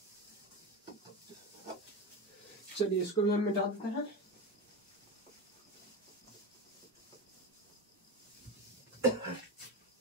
चलिए इसको भी हम मिटा देते हैं।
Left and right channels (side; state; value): both; normal; correlation 0.21